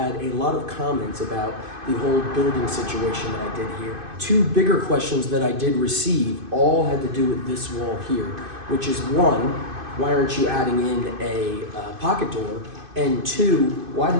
a lot of comments about the whole building situation that I did here. Two bigger questions that I did receive all had to do with this wall here, which is one, why aren't you adding in a pocket door? And two, why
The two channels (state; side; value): late; left; 2.5 ms